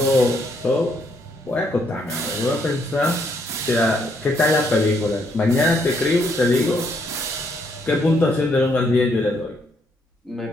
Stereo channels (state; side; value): normal; both; correlation 0.72